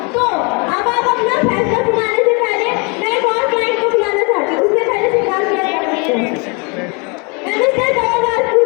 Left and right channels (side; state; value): right; quieter; 32.2 dB